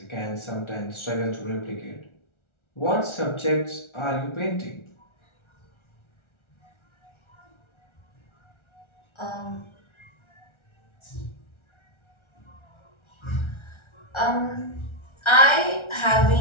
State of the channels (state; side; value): late; right; 1.4 ms